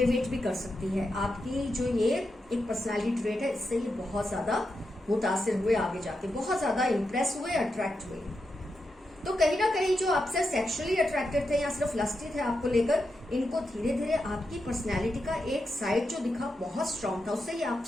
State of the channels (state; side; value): normal; both; correlation 0.87